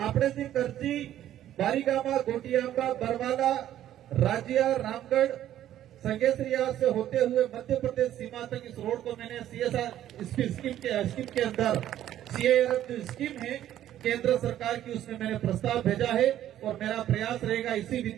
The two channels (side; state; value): left; quieter; 12.1 dB